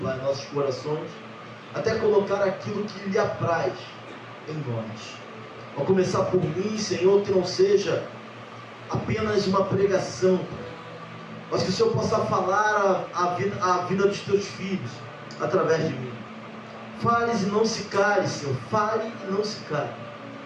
Pai, nossos corações, até colocar aquilo que lhe apraz em nós. Ao começar por mim, Senhor, que não seja apenas uma pregação, Pai, mas que o Senhor possa falar a vida dos teus filhos através de mim. Fales e não se cale, Senhor. Fale e não se cale.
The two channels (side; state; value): both; identical; correlation 1.00